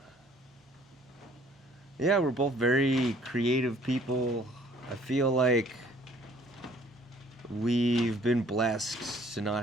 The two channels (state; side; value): normal; both; correlation 0.57